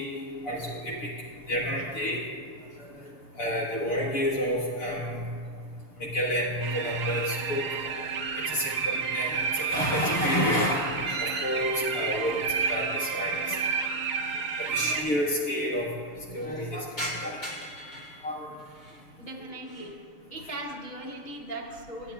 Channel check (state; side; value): late; right; 6.9 ms